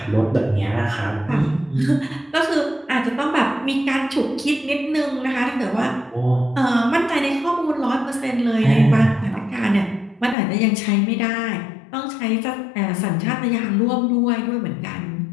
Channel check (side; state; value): right; drops out; at 10.4 s